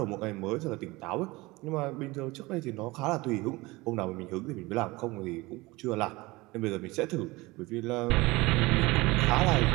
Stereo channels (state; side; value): quieter; left; 21.9 dB